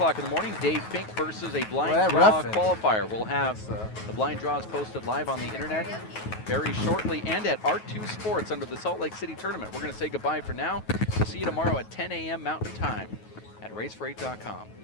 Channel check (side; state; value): right; late; 9.3 ms